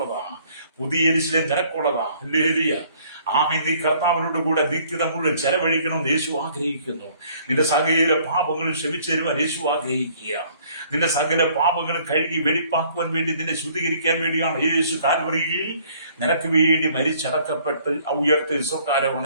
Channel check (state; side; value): inverted; both; correlation -0.59